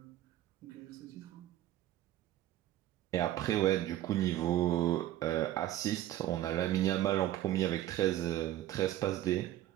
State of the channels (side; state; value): left; quieter; 13.7 dB